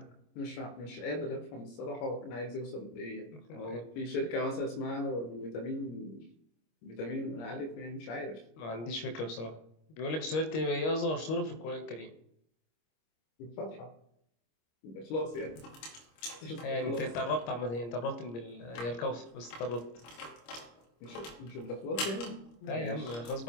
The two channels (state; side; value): late; right; 26 ms